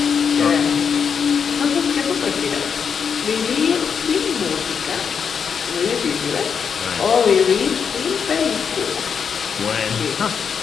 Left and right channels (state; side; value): quieter; right; 6.7 dB